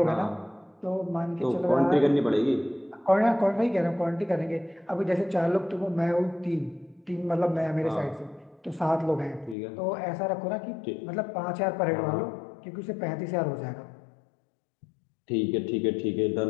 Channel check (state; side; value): drops out; right; at 9.6 s